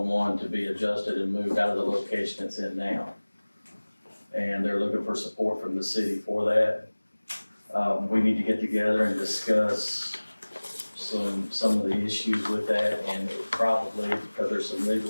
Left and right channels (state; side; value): inverted; both; correlation -1.00